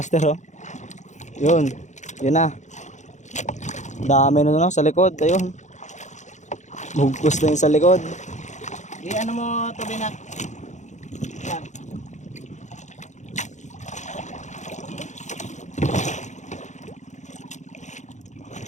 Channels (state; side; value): late; right; 0.35 ms